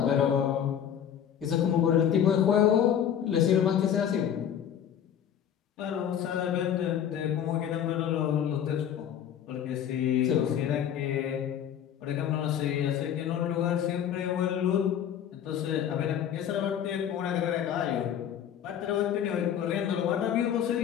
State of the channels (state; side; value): quieter; right; 9.3 dB